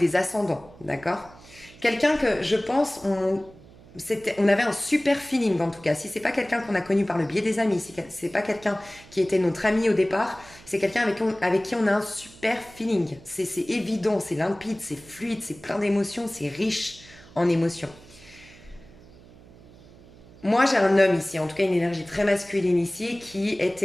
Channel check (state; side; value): noise; right; hum, 22 dB below the sound